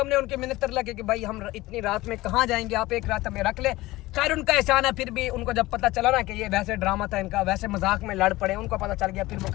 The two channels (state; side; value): quieter; right; 18.8 dB